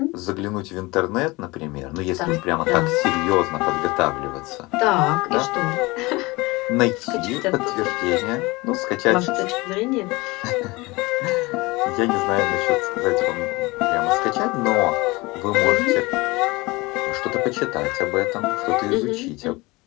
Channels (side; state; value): right; quieter; 22.9 dB